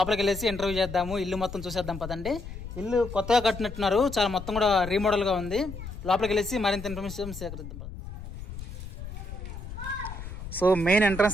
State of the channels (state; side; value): noise; left; rumble, 10 dB below the sound